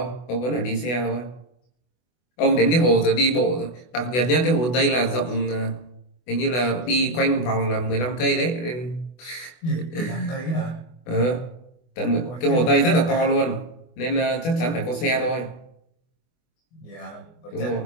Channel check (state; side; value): late; right; 24 ms